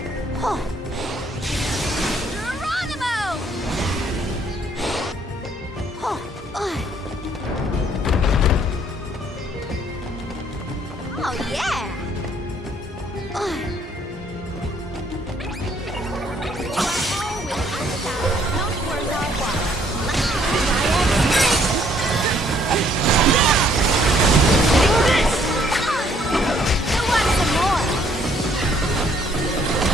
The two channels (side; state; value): both; normal; correlation 0.64